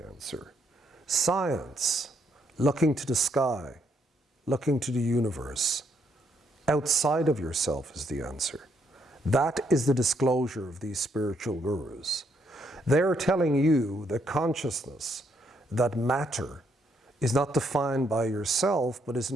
answer. Science, looking to the sky, looking to the universe, outside of yourself is the answer. That is the disclosure of these spiritual gurus. They're telling you that consciousness, that matter, is not defined by yourself, but is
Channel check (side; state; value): both; normal; correlation 0.73